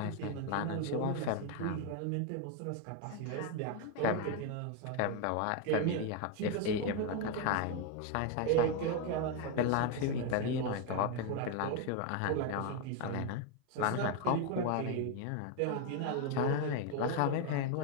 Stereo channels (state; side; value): different; both; correlation 0.01